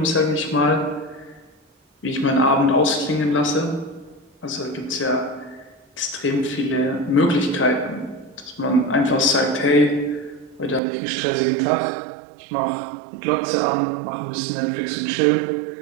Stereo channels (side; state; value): left; drops out; at 10.8 s